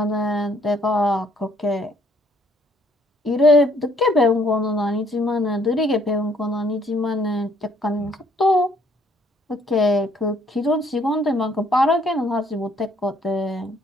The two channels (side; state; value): both; normal; correlation 0.64